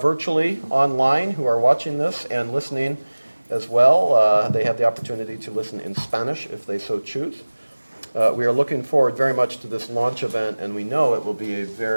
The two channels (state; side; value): inverted; both; correlation -1.00